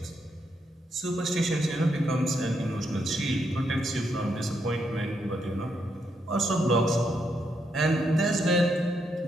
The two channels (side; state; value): both; normal; correlation 0.79